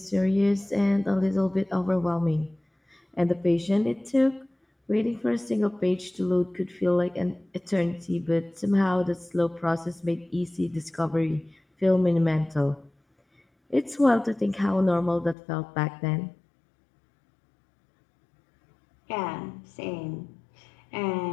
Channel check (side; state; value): right; drops out; at 15.4 s